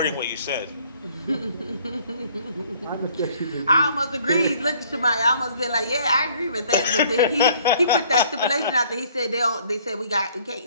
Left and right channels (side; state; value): both; inverted; correlation -0.59